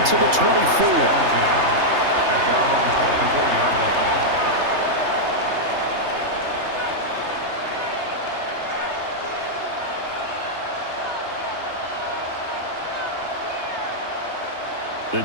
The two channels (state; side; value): late; left; 3.3 ms